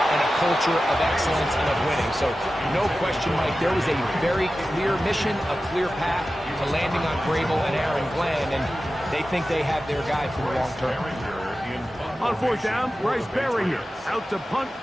a culture of excellence and of winning. So, no question, Mike, there was a very clear mission, a clear path to landing on Grable and Aaron Glenn, and they think they have their guy for the long term. On fourth down, Bryce Baringer out to punt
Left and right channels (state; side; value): normal; both; correlation 0.94